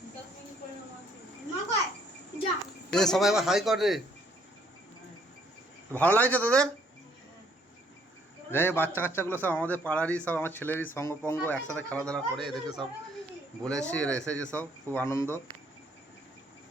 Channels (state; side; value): normal; both; correlation 0.65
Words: সবাই আবার হাই কর রে। ভালো লাগছে তোদের? যাই বাচ্চা কাচ্চাগুলো সব আমাদের পাড়ারই, সব আমার ছেলেরই সঙ্গপঙ্গ, একসাথে খেলাধুলা করে। এদেরকে সব বলেছি, এরা এসেছে, সব খুব আনন্দ।